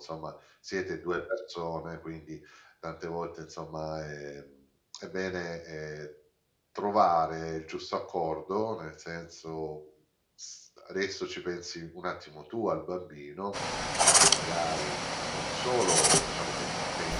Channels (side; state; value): both; identical; correlation 1.00